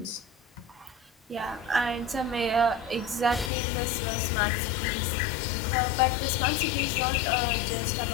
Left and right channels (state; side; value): drops out; right; at 3.5 s